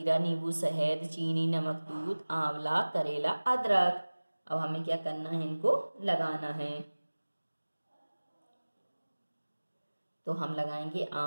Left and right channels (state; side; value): inverted; both; correlation -1.00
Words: नींबू, शहद, चीनी, नमक, दूध, आंवला, करेला, अदरक। अब हमें क्या करना है, इनको लगाना है। तो हम लगाएंगे